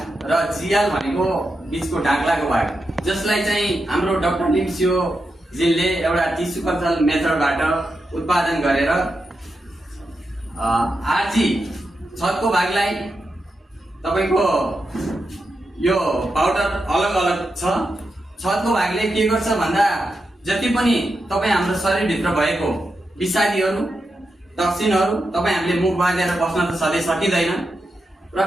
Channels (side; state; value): both; normal; correlation 0.87